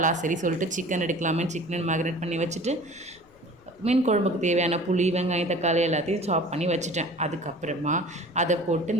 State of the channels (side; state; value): left; noise; rumble, 29 dB below the sound